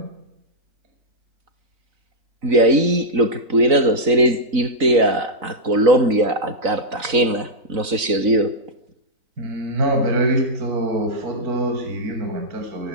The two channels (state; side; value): late; left; 3.9 ms